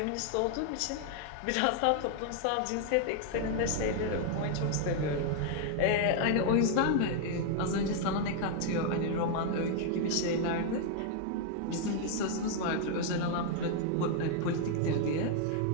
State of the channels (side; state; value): both; different; correlation 0.00